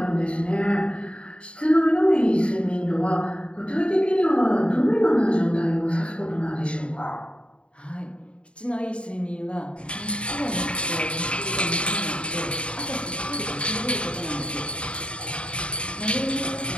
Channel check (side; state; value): right; late; 0.058 ms